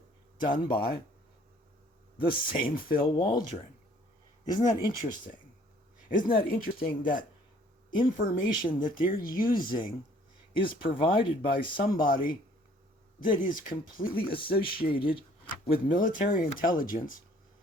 done by the same Phil Waldron. Isn't that interesting? Isn't that interesting that information that they're using is provided by somebody that is completely associated with military intelligence,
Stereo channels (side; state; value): both; normal; correlation 0.58